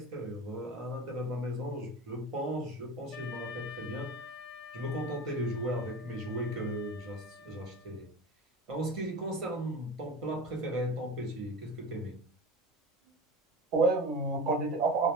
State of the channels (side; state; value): both; normal; correlation 0.31